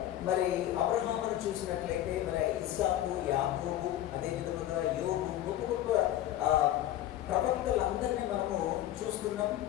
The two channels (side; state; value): right; quieter; 13.0 dB